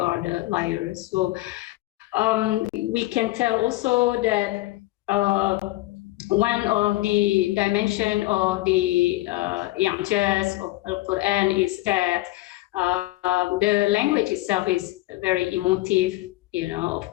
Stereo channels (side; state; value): right; quieter; 18.8 dB